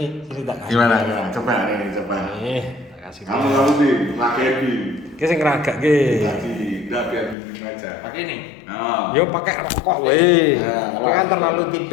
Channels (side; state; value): right; drops out; at 7.4 s